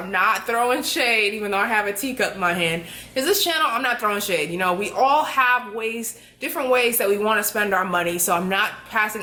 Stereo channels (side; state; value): both; identical; correlation 1.00